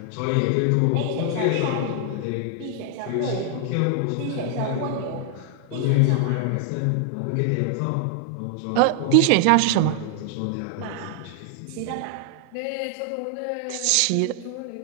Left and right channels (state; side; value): different; both; correlation 0.00